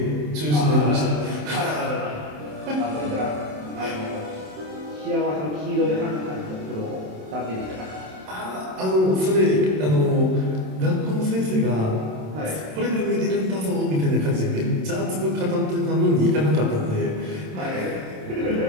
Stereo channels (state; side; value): late; left; 27 ms